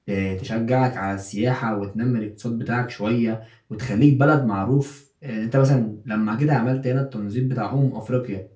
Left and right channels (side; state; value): both; identical; correlation 1.00